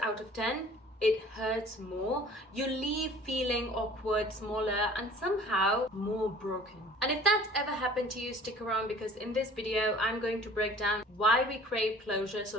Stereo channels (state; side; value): normal; both; correlation 0.49